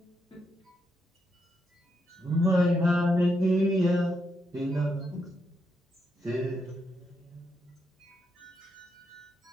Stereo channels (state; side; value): normal; both; correlation 0.81